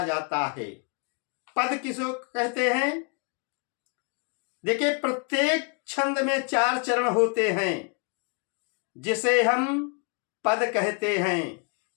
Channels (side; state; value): right; quieter; 36.2 dB